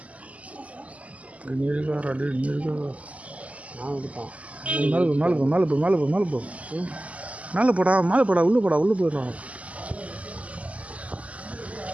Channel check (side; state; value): left; late; 0.069 ms